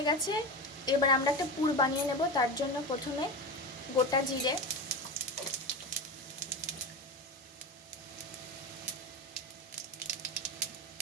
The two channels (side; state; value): both; normal; correlation 0.23